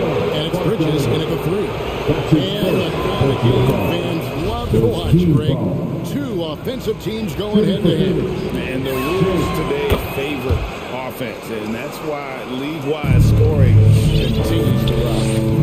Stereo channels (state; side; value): identical; both; correlation 1.00